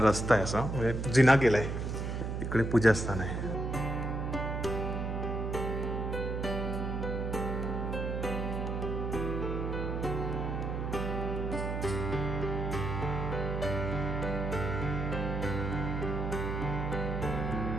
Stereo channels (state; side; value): noise; right; hum, 2 dB below the sound